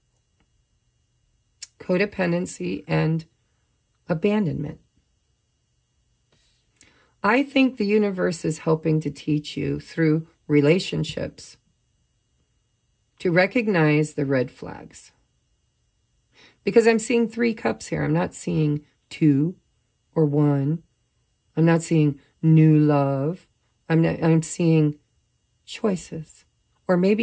codependency, and abandonment. I think the universe is helping to teach you through relationships to recognize the red flags. Because I'm seeing 3 cups here. I'm not seeing 2 or 1. I'm not seeing new love. I'm seeing choices. Or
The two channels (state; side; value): identical; both; correlation 1.00